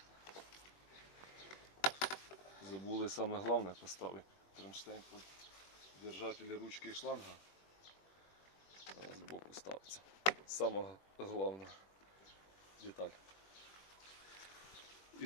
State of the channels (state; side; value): late; right; 21 ms